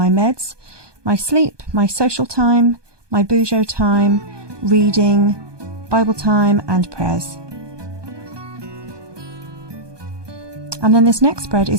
meds, my sleep, my social time, my Bujo time, reading, Bible time and prayers. And then this next spread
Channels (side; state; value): left; late; 1.2 ms